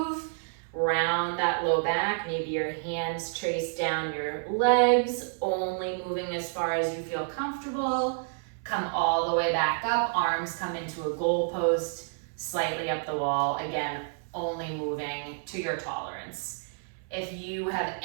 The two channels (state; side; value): silent; left; 58 dB below the other